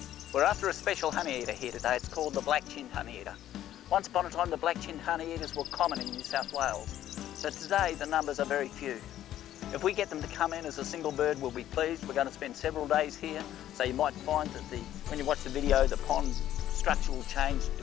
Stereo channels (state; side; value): quieter; right; 12.2 dB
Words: We're after a special honeyeater here today. It's called the Black-chinned Honeyeater. Once upon a time the Black-chinned Honeyeaters were common in New South Wales, but today the numbers are very few. If we get them to come in as a single bird, we'll be pleased. We're going to spend several days here, so you might find that when you watch the video, the pond structure will change